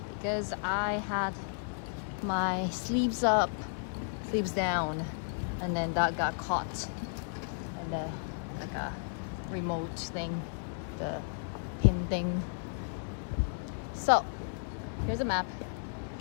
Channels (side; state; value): right; silent; 55 dB below the other